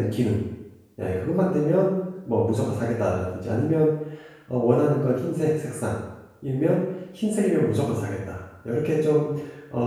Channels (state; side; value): identical; both; correlation 1.00